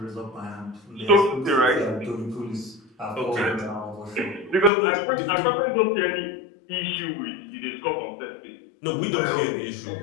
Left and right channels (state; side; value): drops out; right; at 4.7 s